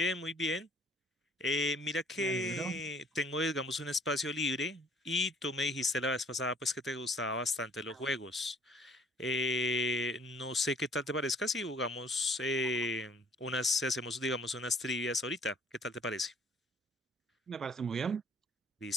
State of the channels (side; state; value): both; normal; correlation 0.56